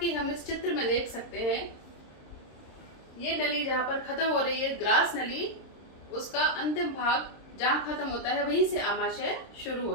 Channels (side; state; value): right; late; 26 ms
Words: हम इस चित्र में देख सकते हैं, ये नली जहां पर खत्म हो रही है ग्रास नली, उसका अंतिम भाग जहां खत्म होता है वहीं से आमाशय शुरू